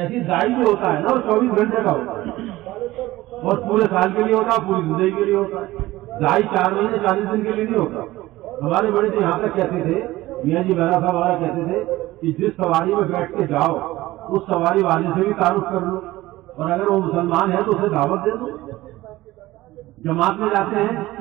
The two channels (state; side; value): quieter; left; 17.5 dB